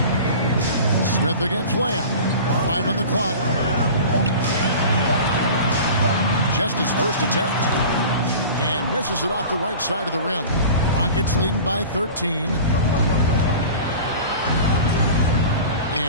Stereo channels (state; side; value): inverted; both; correlation -0.38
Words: Smith against Lamb. 5 on the clock. Just his first attempt. And misses it off the right side of the rim. Rockets leading by 13.